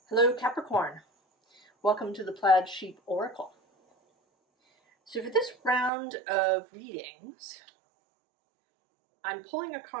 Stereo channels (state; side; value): drops out; left; at 5.9 s